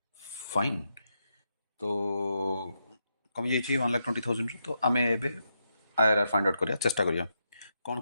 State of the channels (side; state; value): both; inverted; correlation -0.84